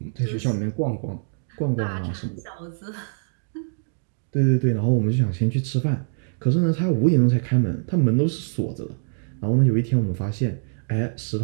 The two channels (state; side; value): silent; left; digital silence